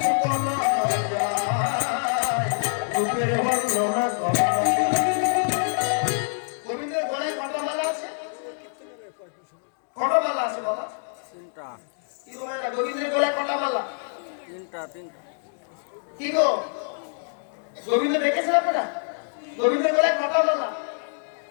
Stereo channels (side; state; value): right; silent; digital silence